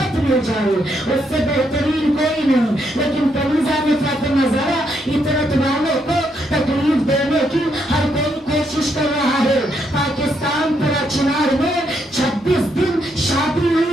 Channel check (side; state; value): both; normal; correlation 0.76